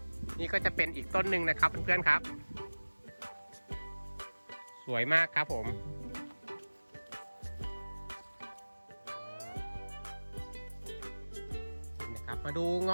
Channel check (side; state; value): both; inverted; correlation -1.00